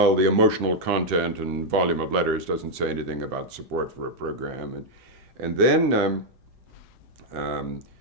the emotional content and volume of letters doesn't say anything about support for a program. And then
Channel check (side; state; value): left; late; 7.8 ms